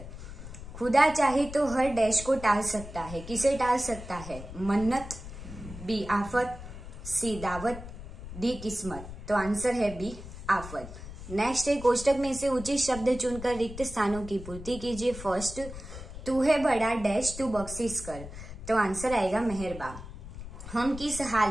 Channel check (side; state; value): left; noise; rumble, 12 dB below the sound